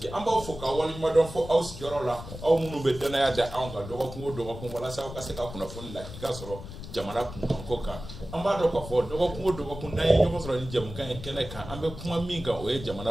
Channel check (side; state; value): left; noise; rumble, 12 dB below the sound